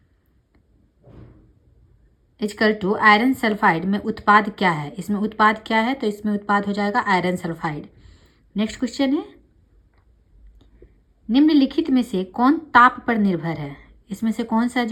equal to iron sulphide में उत्पाद क्या है। इसमें उत्पाद क्या है? तो इसमें उत्पाद हो जाएगा आयरन सल्फाइड। नेक्स्ट क्वेश्चन है, निम्नलिखित में से कौन ताप पर निर्भर है। इसमें से कौन सा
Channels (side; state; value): both; identical; correlation 1.00